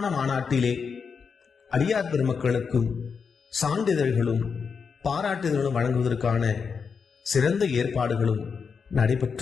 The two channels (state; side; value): quieter; right; 5.8 dB